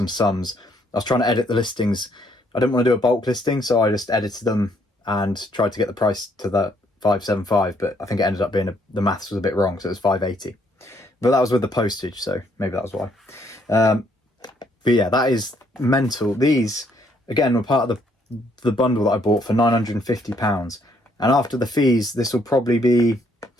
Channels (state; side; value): normal; both; correlation 0.69